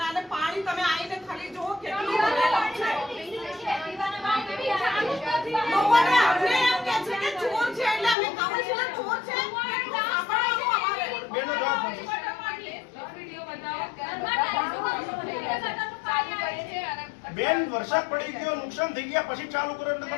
અને પાણી તમે આવીને ખાલી જુઓ કેટલું ભરેલું છે. લોકોને આપણે એમ કહે છે કે ચોર છે એટલે અમે કાઉન્સિલર ચોર છે સાંભળવાનું અમારે. બેનો જવાબ કોણ છે? બેન વરસાદ પડી ગયો, નુકસાન થઈ ગયા પછી ચાલુ કરો એટલે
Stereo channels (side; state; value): right; drops out; at 8.2 s